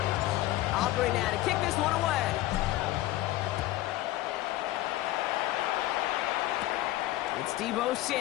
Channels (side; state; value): right; quieter; 16.1 dB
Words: Aubrey now to kick this one away. It's Deebo